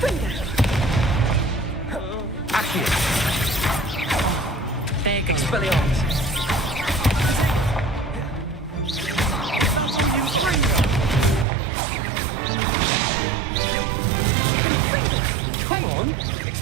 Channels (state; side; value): drops out; left; at 11.5 s